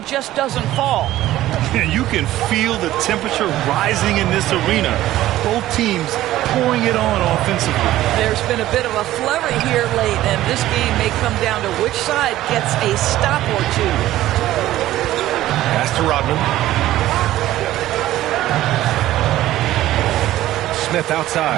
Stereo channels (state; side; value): quieter; left; 14.7 dB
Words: just doesn't fall. And you can feel the temperature rising in this arena. Both teams pouring it on offensively. There's been a bit of a flurry here late, and this game may come down to which side gets a stop or two. Pass to Rodman. Smith